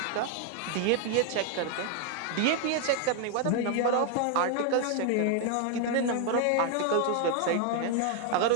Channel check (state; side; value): different; both; correlation 0.01